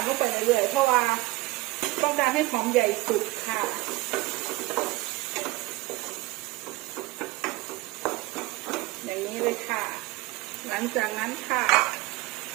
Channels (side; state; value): left; quieter; 20.2 dB